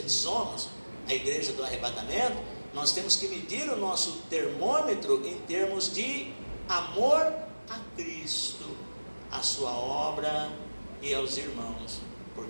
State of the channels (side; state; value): both; inverted; correlation -1.00